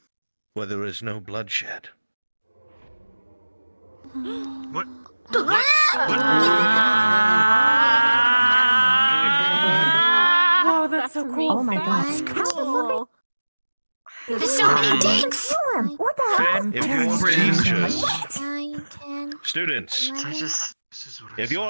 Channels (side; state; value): both; inverted; correlation -1.00